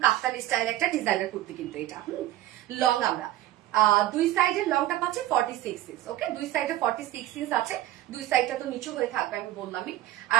কাপ্তান স্টাইল একটা ডিজাইনার কুর্তি কিন্তু এটা। লং আমরা দুই সাইডের লংটা পাচ্ছি 46 ইঞ্চ। ওকে, দুই সাইডে 46 ইঞ্চ আছে, দুই সাইডটা তো নিচু হয়ে থাকবে আমি বললামই।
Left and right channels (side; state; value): left; quieter; 14.8 dB